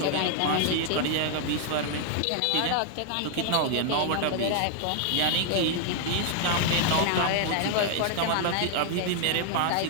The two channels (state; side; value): different; both; correlation 0.00